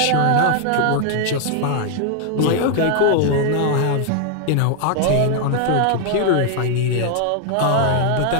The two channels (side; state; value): both; different; correlation 0.00